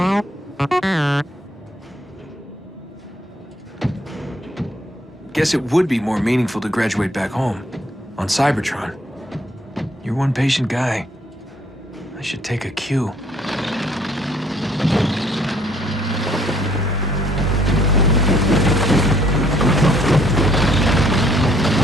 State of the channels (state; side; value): normal; both; correlation 0.64